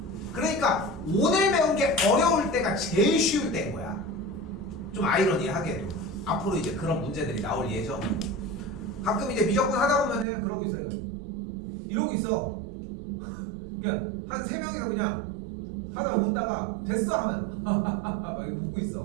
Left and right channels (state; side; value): drops out; left; at 10.2 s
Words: 그러니까 오늘 배운 게 어려울 때가 제일 쉬울 때인 거야. 좀 아이러니하게도 앞으로 이제 그런 문제들이 나올 예정이고, 가끔 이제 미적분 하다 보면은 그러고 있어요. 이러고 있어. 그냥 한 3명이서 그냥 하다가 웃다가 됐어 하면 막 웃고